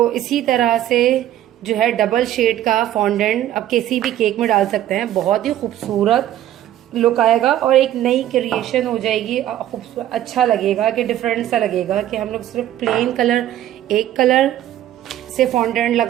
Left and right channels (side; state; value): left; quieter; 12.5 dB